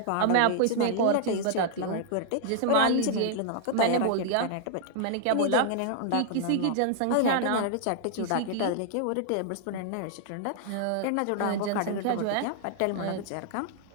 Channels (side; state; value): both; different; correlation -0.01